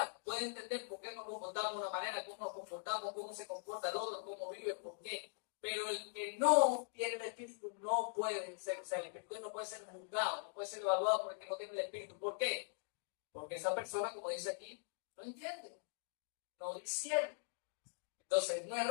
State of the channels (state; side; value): silent; right; digital silence